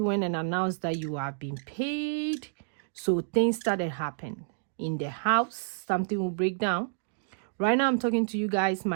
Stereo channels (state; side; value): silent; left; digital silence